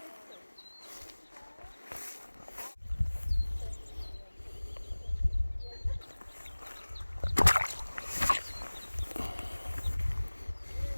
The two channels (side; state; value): both; inverted; correlation -1.00